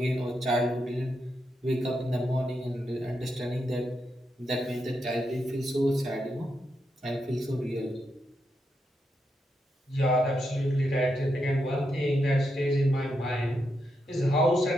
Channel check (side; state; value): both; normal; correlation 0.83